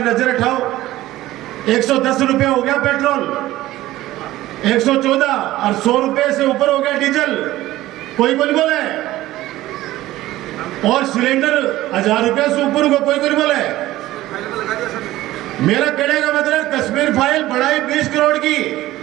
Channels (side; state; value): left; quieter; 16.0 dB